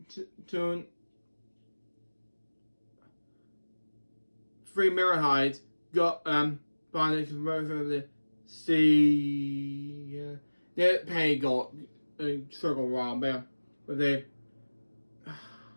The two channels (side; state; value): both; inverted; correlation -1.00